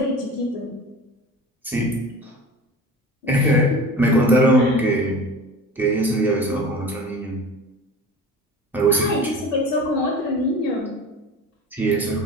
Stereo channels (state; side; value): normal; both; correlation 0.37